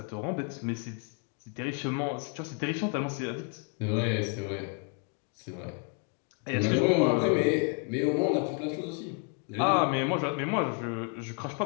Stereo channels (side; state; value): right; quieter; 37.3 dB